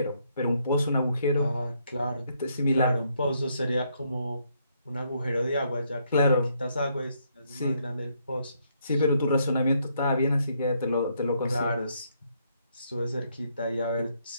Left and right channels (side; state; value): both; inverted; correlation -0.73